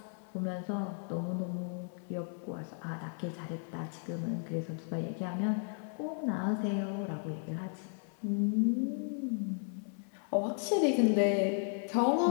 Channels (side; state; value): right; silent; 55 dB below the other